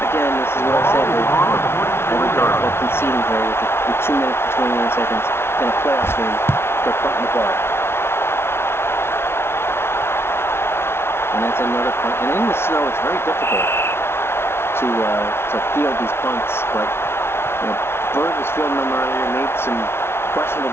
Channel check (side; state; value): right; late; 0.12 ms